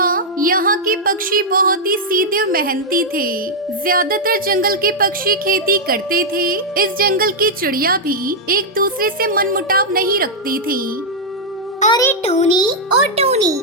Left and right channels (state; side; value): normal; both; correlation -0.05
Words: यहाँ के पक्षी बहुत ही सीधे और मेहनती थे। ज्यादातर जंगल के पक्षी खेती करते थे। इस जंगल की चिड़िया भी एक दूसरे से मनमुटाव नहीं रखती थी। अरे टूनी ओ टूनी,